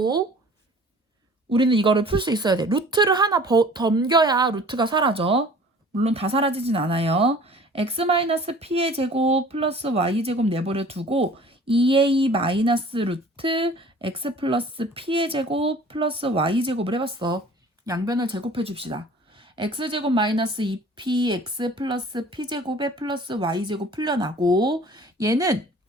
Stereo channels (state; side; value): normal; both; correlation 0.48